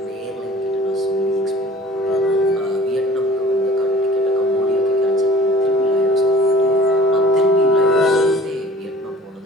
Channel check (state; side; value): normal; both; correlation 0.48